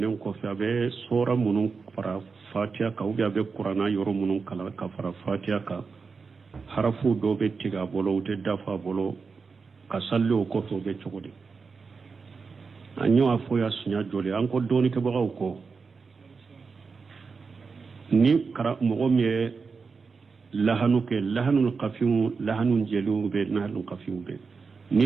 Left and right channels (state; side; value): quieter; left; 4.9 dB